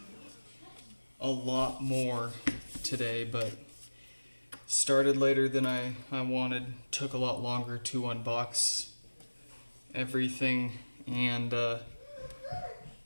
a lot more today, but started later than I wanted. Took a lot longer to unbox everything, and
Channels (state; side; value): inverted; both; correlation -1.00